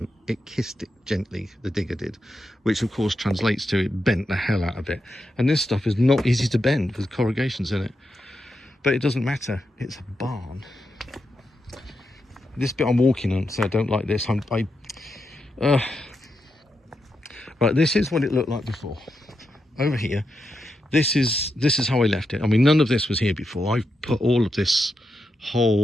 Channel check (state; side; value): normal; both; correlation 0.86